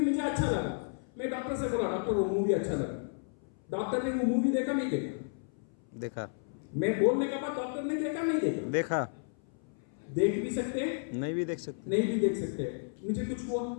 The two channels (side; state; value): right; silent; 56 dB below the other